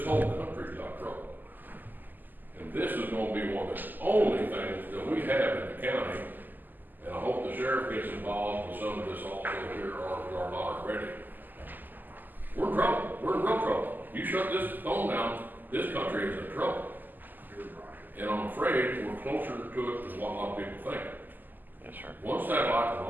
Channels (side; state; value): left; late; 0.087 ms